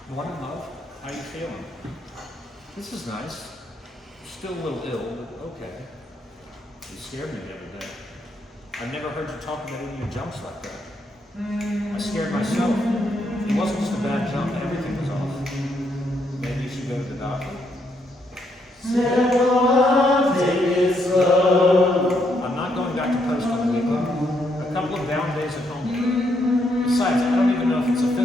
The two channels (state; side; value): normal; both; correlation 0.76